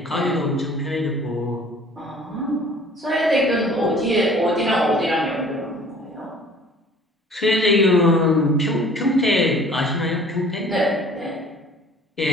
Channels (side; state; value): both; normal; correlation 0.51